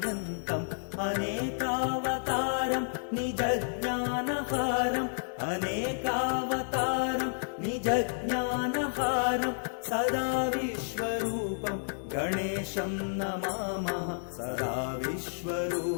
अनेकावतारं निजज्ञानहारम् अनेकावतारं निजज्ञानहारं सदा विश्वरूपं गणेशं नमामः सदा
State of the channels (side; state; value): right; silent; digital silence